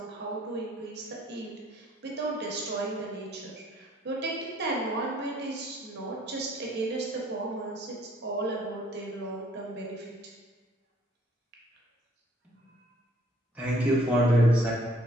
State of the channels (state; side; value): normal; both; correlation 0.61